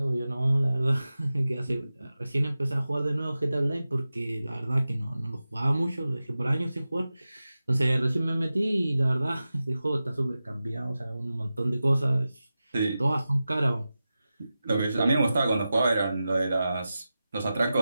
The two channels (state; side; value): inverted; both; correlation -0.94